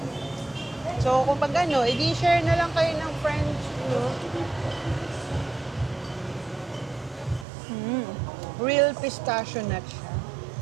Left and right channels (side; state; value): left; drops out; at 7.5 s